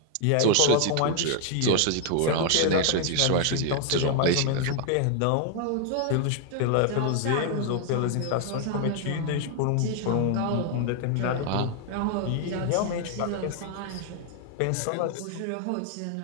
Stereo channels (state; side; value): different; both; correlation 0.00